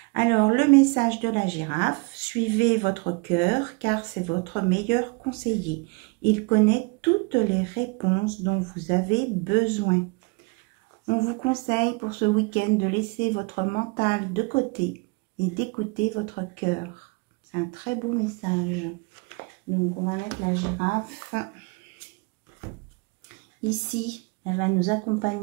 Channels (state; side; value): quieter; left; 29.2 dB